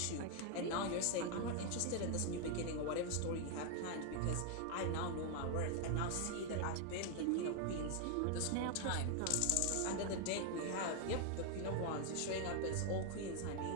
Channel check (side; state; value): both; different; correlation 0.00